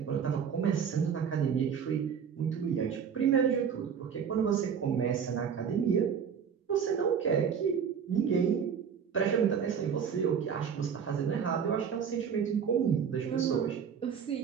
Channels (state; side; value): quieter; left; 7.3 dB